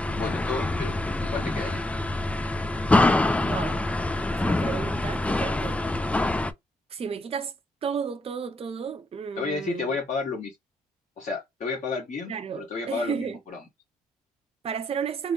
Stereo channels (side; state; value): both; normal; correlation 0.77